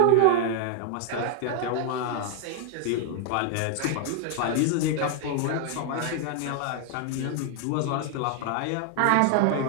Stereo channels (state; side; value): different; both; correlation 0.00